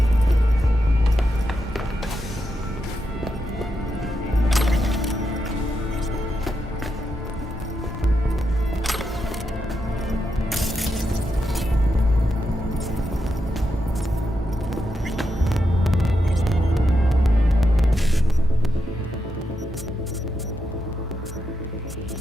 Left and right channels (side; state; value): both; normal; correlation 0.85